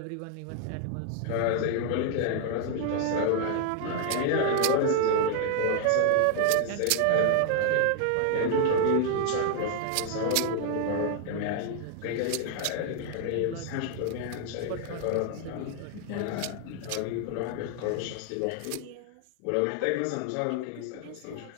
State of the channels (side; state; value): both; different; correlation 0.00